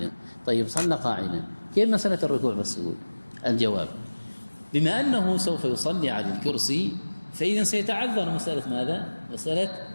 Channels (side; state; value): both; inverted; correlation -1.00